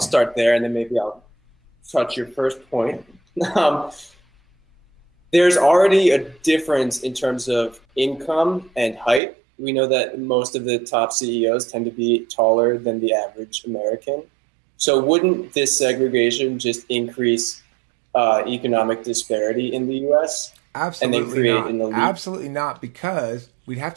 start there, and then maybe I'll touch your first point. There's already a difference in terms of income and height. We know that most of the top CEOs tend to be taller than the average American. So wouldn't this segregation just increase economic disparity in the U.S.? Absolutely and then create not. an elite? Absolutely not, because we'd have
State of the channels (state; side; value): drops out; left; at 9.2 s